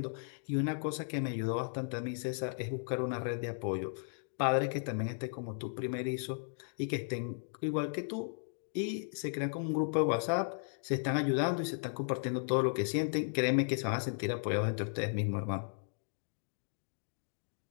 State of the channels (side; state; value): right; silent; digital silence